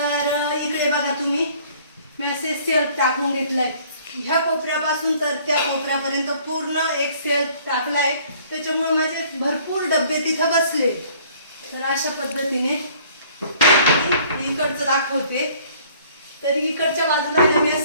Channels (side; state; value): both; inverted; correlation -0.56